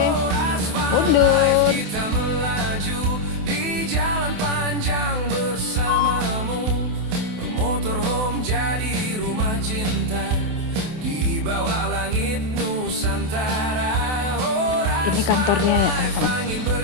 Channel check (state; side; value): late; left; 28 ms